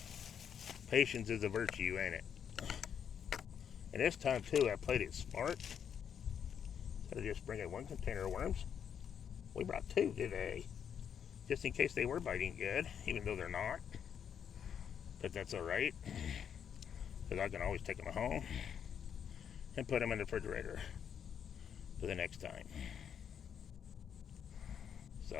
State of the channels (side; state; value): right; quieter; 8.1 dB